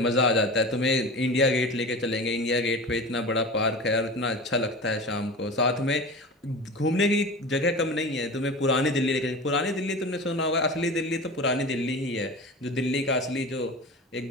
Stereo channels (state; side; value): normal; both; correlation 0.32